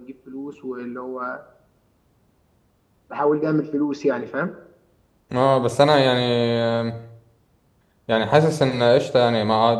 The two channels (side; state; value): both; identical; correlation 1.00